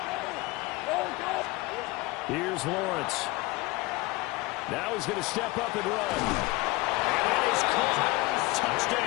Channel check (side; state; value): right; quieter; 22.0 dB